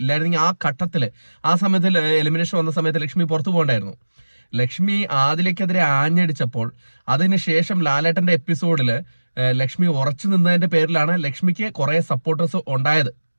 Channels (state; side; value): inverted; both; correlation -1.00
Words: ഇല്ലായിരുന്നെങ്കിൽ ആ ഘട്ടത്തിൽ ആ സമയത്ത് എലിമിനേഷൻ വന്ന സമയത്ത് ലക്ഷ്മി പുറത്തു പോകണ്ടായിരുന്നു. ലക്ഷ്മി ആദിലയ്ക്കെതിരെ ആഞ്ഞടിച്ചപ്പോൾ അതിനുശേഷം ലാലേട്ടന്റെ എപ്പിസോഡിൽ ലക്ഷ്മി ഉറച്ചു നിന്നതിന്റെ പേരിലാണ് ലക്ഷ്മിക്ക് കുറെ സപ്പോർട്ടേഴ്സ് ഉണ്ടായത്.